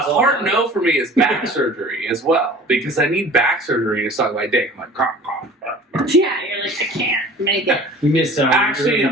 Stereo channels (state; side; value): normal; both; correlation 0.44